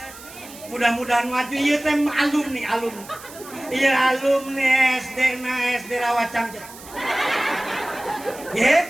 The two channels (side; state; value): right; noise; hiss, 17 dB below the sound